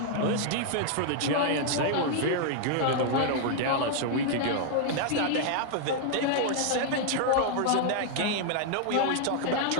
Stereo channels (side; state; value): both; different; correlation 0.00